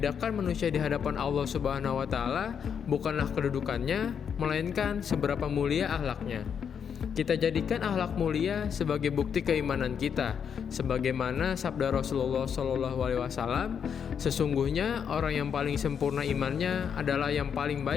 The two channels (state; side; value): quieter; right; 7.4 dB